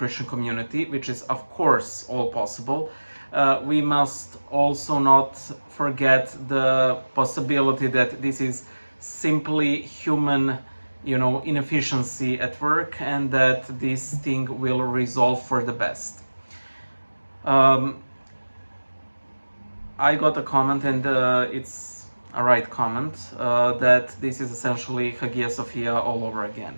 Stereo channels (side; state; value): both; inverted; correlation -1.00